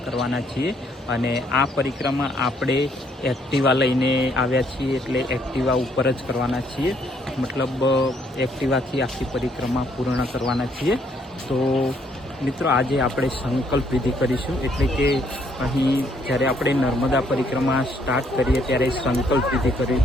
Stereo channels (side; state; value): both; normal; correlation 0.69